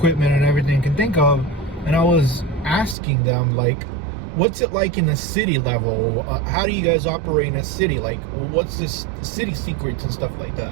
and everything you can think of. And I was asking them, like, what's it like in the city level? How do you guys operate in a city? Like, what's the city secrets and stuff like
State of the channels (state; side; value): drops out; left; at 3.0 s